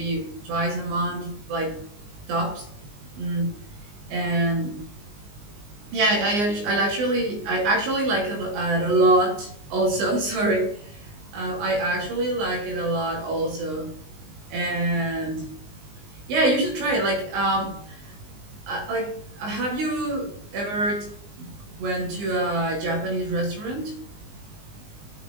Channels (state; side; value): late; left; 19 ms